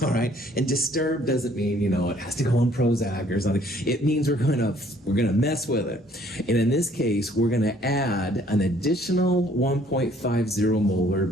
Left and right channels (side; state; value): both; normal; correlation 0.61